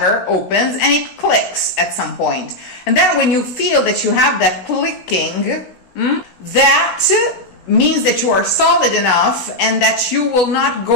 opens and it clicks at some point. And then when you feel that you have that clicking, that means that you are solid enough and that you will not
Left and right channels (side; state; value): right; late; 16 ms